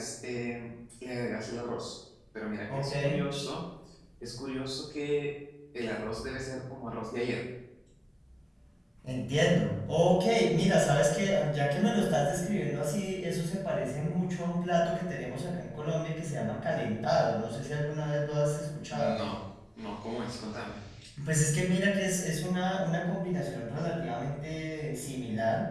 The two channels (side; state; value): both; identical; correlation 1.00